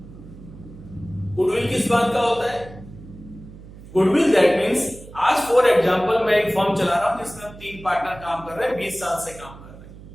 गुडविल किस बात का होता है, गुडविल दैट मींस, आज फॉर एग्जांपल मैं एक फर्म चला रहा हूं जिसमें हम 3 पार्टनर काम कर रहे हैं, 20 साल से काम कर रहे हैं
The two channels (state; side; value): noise; right; hum, 17 dB below the sound